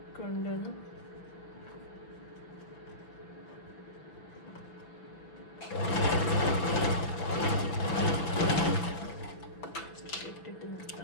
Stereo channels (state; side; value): late; right; 5.7 ms